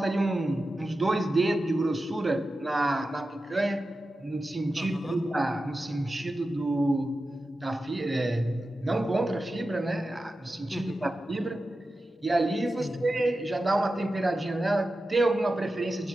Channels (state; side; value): normal; both; correlation 0.92